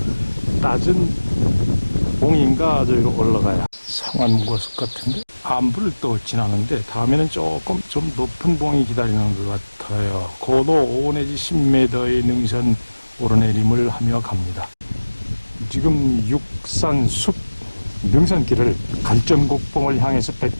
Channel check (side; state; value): both; inverted; correlation -1.00